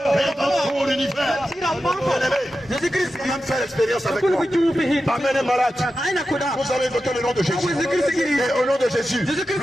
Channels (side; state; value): both; normal; correlation 0.91